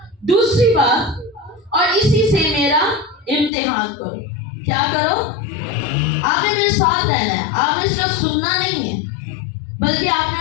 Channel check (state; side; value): drops out; right; at 3.5 s